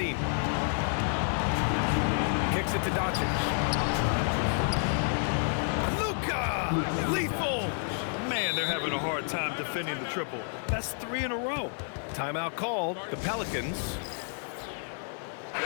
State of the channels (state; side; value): silent; right; 58 dB below the other